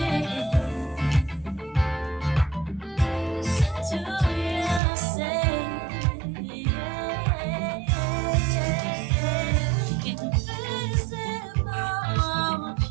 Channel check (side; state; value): left; drops out; at 4.8 s